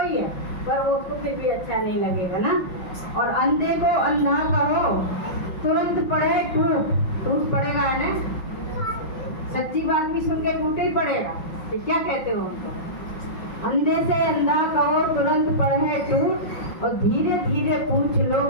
है, पर वो उसको फिर भी अच्छा नहीं लगेगा ना। और अंधे को अंधा कहो, तुरंत पड़े टूट पड़ेगा है ना। सच्ची बात भी सुन के टूटे ही पड़ेगा। तो क्या कहते हो उनको? अंधे से अंधा कहो, तुरंत पड़े टूट, और धीरे धीरे पूछ लो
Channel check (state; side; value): late; right; 5.4 ms